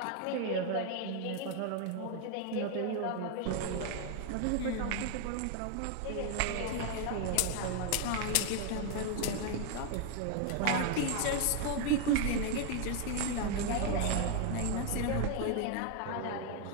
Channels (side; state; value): both; different; correlation 0.01